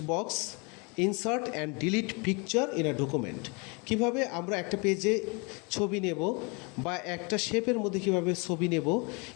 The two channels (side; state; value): right; quieter; 31.2 dB